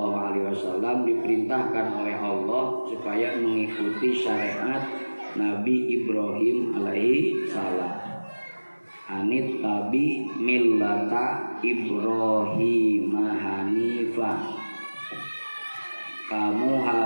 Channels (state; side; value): inverted; both; correlation -1.00